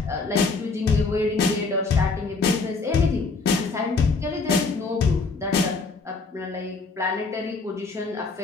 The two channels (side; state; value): right; quieter; 4.1 dB